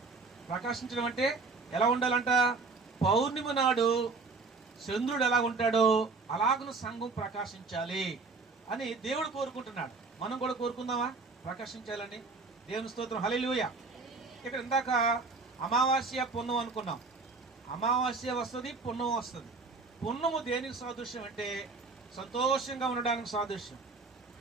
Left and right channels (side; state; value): left; quieter; 4.1 dB